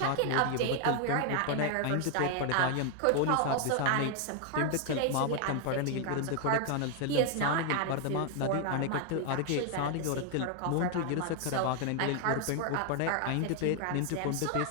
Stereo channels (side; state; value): both; different; correlation 0.00